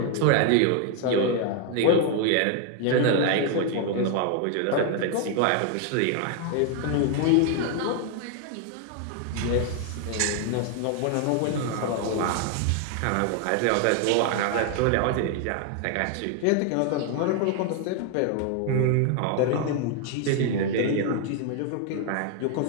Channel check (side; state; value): both; different; correlation 0.01